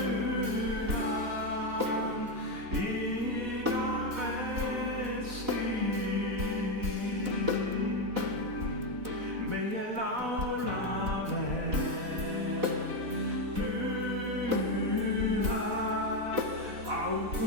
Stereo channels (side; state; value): left; late; 4.0 ms